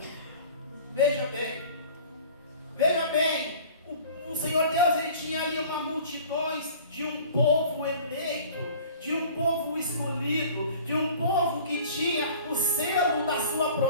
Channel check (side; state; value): both; inverted; correlation -0.45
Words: Veja bem, o Senhor Deus, ele tinha ali uma multidões de um povo eleito, de um povo escolhido, de um povo que tinha o selo da sua